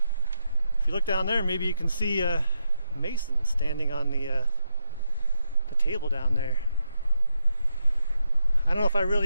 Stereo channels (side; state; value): both; inverted; correlation -0.82